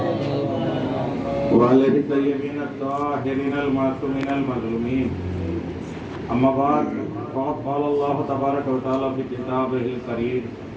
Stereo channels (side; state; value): both; identical; correlation 1.00